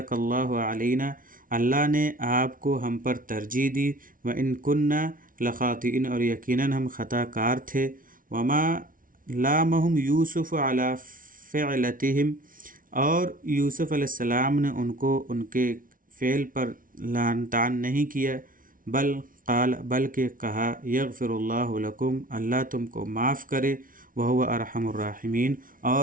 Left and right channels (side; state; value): left; late; 0.39 ms